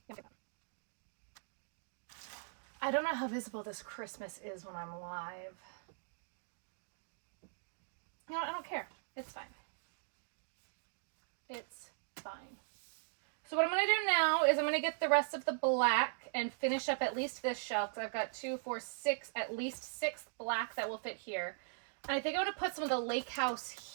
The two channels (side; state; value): left; silent; digital silence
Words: No. I don't know how visible this Christmas is when I'm live. You know what? I don't care. It's fine. It's fine. So what I'm going to do now is I'm going to get the rest of the black and finish up at least this shelf. So I've got 2, 4, 6, at least 6 black that will fit here. And I think I'm going to put some of the Lake House